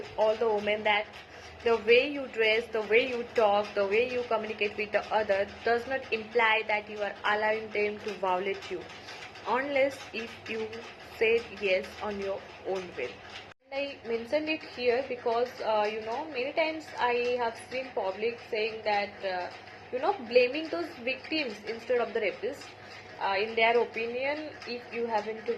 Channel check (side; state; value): both; identical; correlation 1.00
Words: all the women, that the way you dress, the way you talk, the way you communicate with the other does not imply that you are allowing them to violate you, unless if you said yes on your own will. I mentioned it here because many times I have seen public saying that blaming those victims instead of the rapists. In their opinion, if you happen to